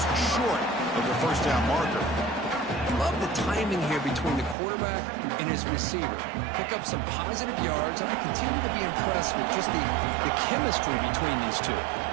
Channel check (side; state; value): left; drops out; at 4.5 s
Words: short of the first down marker. Love the timing here between the quarterback and his receiver. Pick up some positive yards, and I continue to be impressed with just the chemistry between these two.